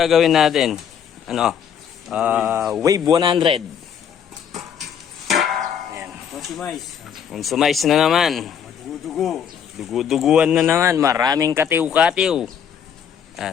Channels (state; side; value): quieter; right; 8.1 dB